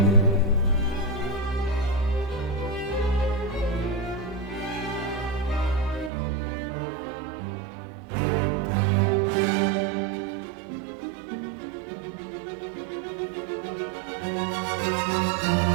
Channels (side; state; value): left; drops out; at 6.1 s